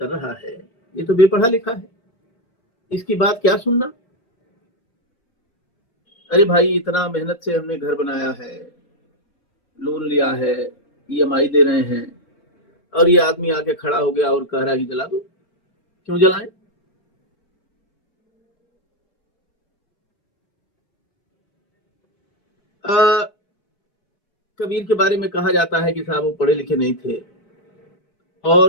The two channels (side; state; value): right; late; 4.3 ms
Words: रहा है, ये तो बेपढ़ा लिखा है, इसकी बात क्या सुनना। अरे भाई, इतना मेहनत से हमने घर बनाया है, लोन लिया है, EMI दे रहे हैं, और ये आदमी आके खड़ा हो गया और कह रहा है कि जला दो। क्यों जलाएं? कबीर के बारे में कहा जाता है कि साहब वो पढ़े लिखे नहीं थे